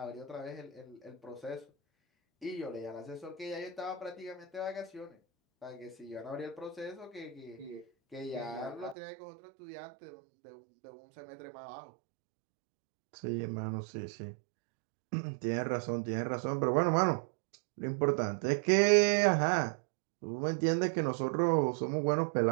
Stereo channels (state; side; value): drops out; left; at 9.0 s